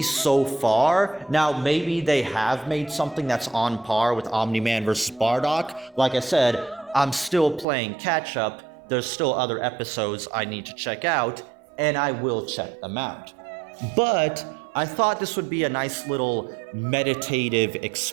so far, now maybe they have made something that's on par with Omni-Man versus Bardock. Like I said, I'm still playing catch up. There's still other episodes I need to check out, and I will check them out. But I thought this would be a nice little meditative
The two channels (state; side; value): drops out; left; at 7.7 s